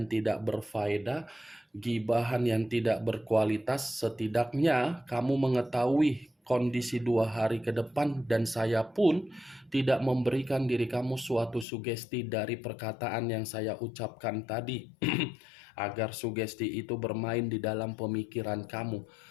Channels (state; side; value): drops out; right; at 11.7 s